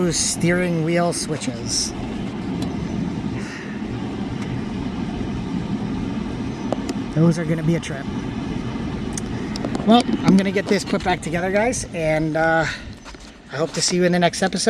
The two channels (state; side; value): identical; both; correlation 1.00